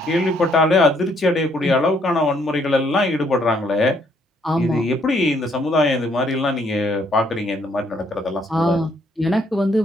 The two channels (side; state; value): both; normal; correlation 0.69